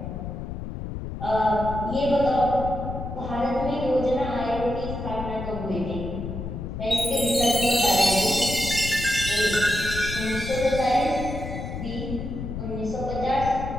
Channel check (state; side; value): noise; left; rumble, 6 dB below the sound